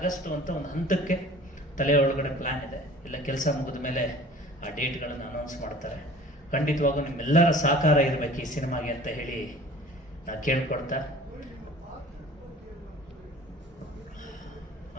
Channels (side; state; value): both; normal; correlation 0.46